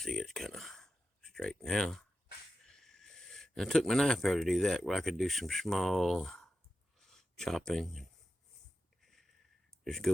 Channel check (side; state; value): both; normal; correlation 0.91